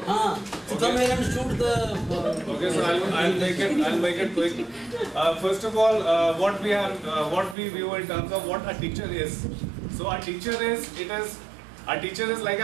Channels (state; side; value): drops out; left; at 7.6 s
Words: So come here and shoot the. okay, so I'll make it quick. First of all, what we view in terms of what a teacher is. So a teacher is like